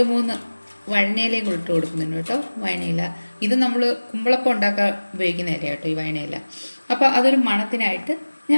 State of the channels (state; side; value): inverted; both; correlation -1.00